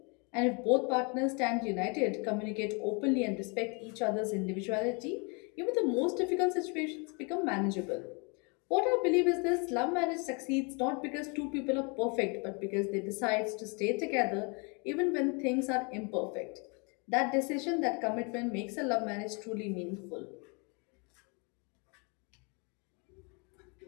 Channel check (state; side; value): quieter; right; 32.9 dB